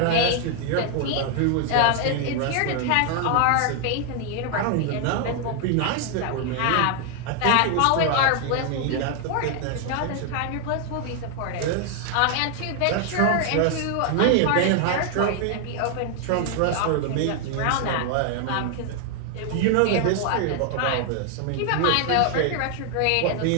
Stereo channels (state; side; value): different; both; correlation 0.00